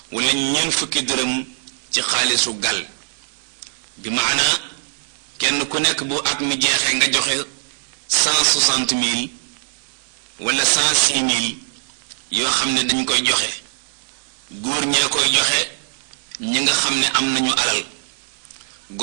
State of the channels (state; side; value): silent; left; 62 dB below the other